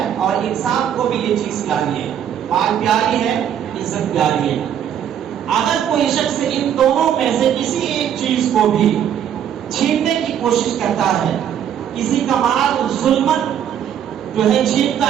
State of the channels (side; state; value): left; quieter; 9.5 dB